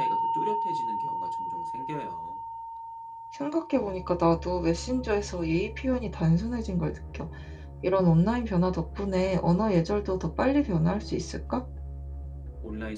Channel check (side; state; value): both; identical; correlation 1.00